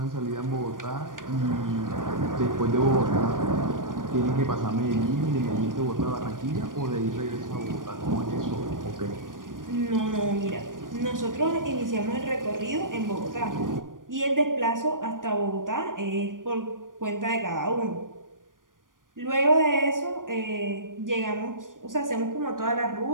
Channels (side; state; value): left; late; 0.89 ms